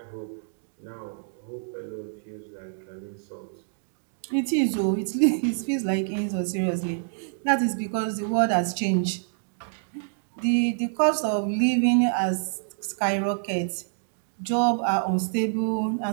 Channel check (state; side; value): silent; left; digital silence